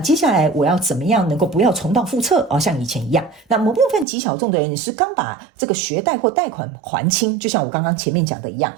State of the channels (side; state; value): left; drops out; at 4.0 s